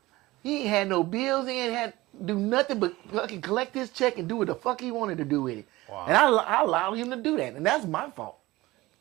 He ain't had no bills. He ain't had to do nothing but fucking collect his check and do what the fuck he wanted to do with it. Wow. And I allowed him to do that. And that's my fault.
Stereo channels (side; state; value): left; quieter; 19.2 dB